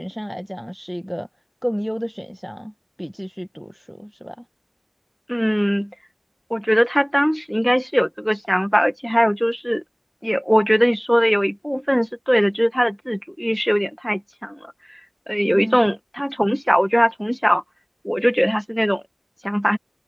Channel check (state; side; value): identical; both; correlation 1.00